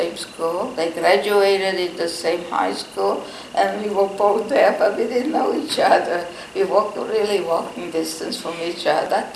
school. They graduated in the same high school, and we were both there, but we didn't know each other. We walked really walking distance from each other.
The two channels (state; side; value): identical; both; correlation 1.00